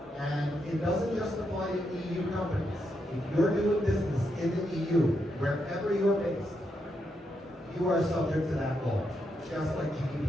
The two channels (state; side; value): normal; both; correlation 0.81